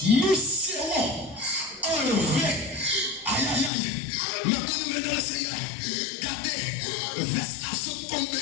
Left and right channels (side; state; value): right; drops out; at 3.7 s